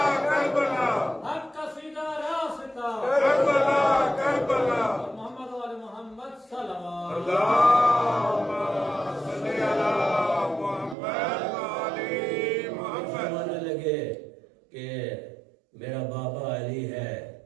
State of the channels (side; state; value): left; drops out; at 11.0 s